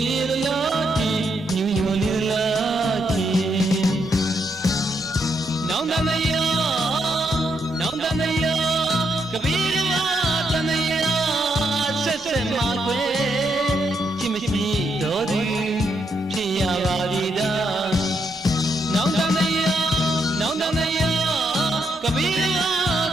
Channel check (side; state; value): both; normal; correlation 0.78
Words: းလာတီညူညူလေးလာတီနောင်တမယနောင်တမယကပီရမတမယဆက်ဆက်မှာကွယ်ချစ်မရှိတော့သူဖြစ်ရပါသည်သာနောင်တမယနောင်တမယကပီရမ